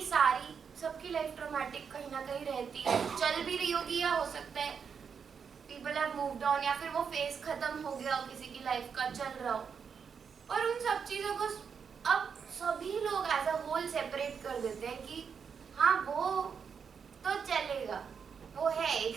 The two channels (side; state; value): left; quieter; 6.5 dB